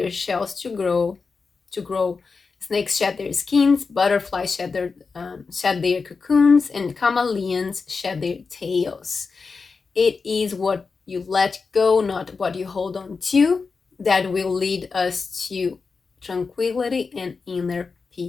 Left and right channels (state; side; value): quieter; right; 4.7 dB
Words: shells to grow. Snakes shed their skins, butterflies shed their cocoons, and chameleons shed their tails. It is what you let go, not what you hold on to, that will lead us to tranquility and inner